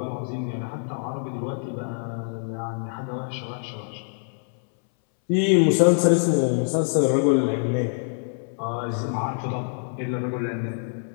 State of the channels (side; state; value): right; silent; 62 dB below the other